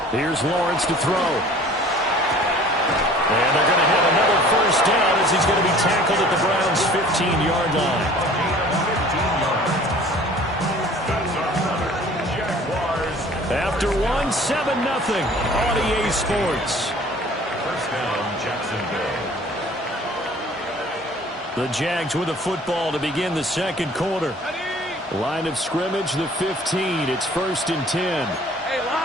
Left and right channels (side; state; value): both; normal; correlation 0.49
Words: Here's Lawrence to throw. And they're going to have another first down as he's going to be tackled at the Browns' 15-yard line. After 1, 7-0 on EA Sports. First down, Jacksonville. The Jags with the football to begin the second quarter. Line of scrimmage, the 15. It's 1st and 10.